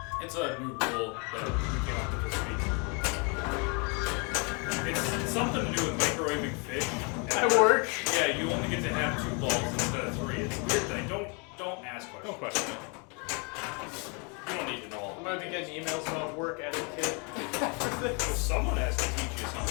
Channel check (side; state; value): right; quieter; 33.5 dB